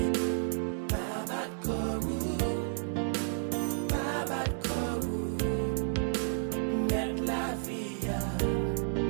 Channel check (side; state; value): left; silent; digital silence